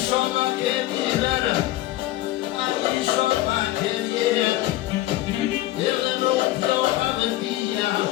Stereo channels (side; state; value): right; quieter; 16.2 dB